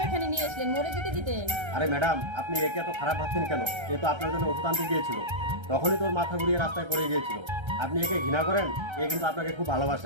এখানে নিয়ে আসলেন? মরে যেতে দিতেন। আরে ম্যাডাম, আপনি একে এত খারাপ ভাবছেন কেন? এ তো আপনার জন্য ওষুধ আনতে গিয়েছিল, তখনই তোর মাথা ঘুরিয়ে রাস্তায় পড়ে গিয়েছিল। আপনি একে ঘৃণা করেন, এ কিন্তু আপনাকে খুব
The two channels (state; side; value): late; left; 1.3 ms